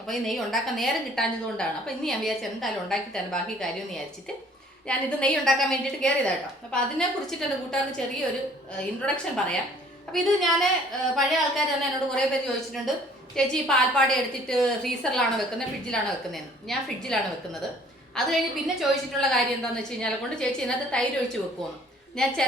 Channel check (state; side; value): normal; both; correlation 0.56